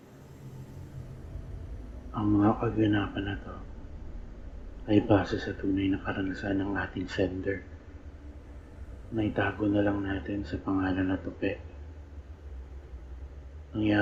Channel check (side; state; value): both; identical; correlation 1.00